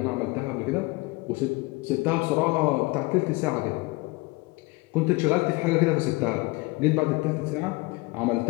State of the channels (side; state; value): right; quieter; 23.8 dB